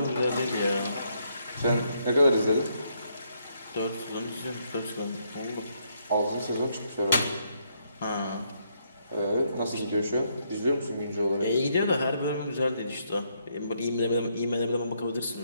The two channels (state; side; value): inverted; both; correlation -0.75